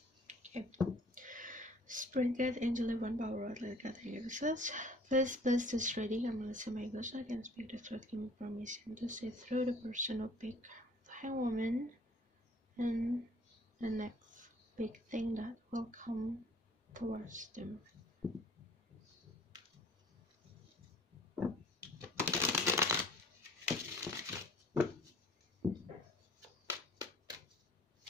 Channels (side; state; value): both; normal; correlation 0.53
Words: Spirit guide, angel, divine power, let God hear us. Please bless this reading. I'm Melissa My Ghost. I can speak the truth. Give me permission to see through the person who pick the Hanged Woman and the next big thing that will come towards them.